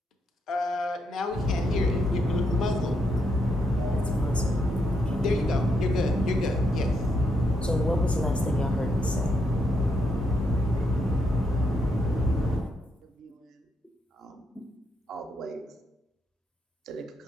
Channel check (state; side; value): normal; both; correlation 0.79